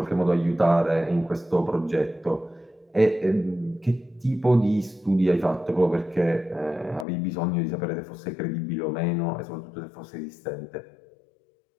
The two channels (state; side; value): drops out; right; at 7.1 s